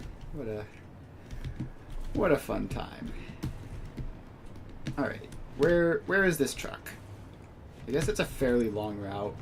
what a fun time. All right, where is this truck? I guess it's a fairly long route,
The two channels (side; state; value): both; identical; correlation 1.00